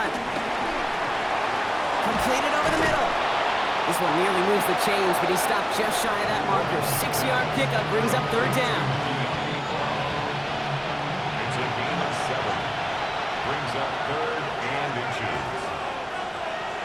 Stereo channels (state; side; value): identical; both; correlation 1.00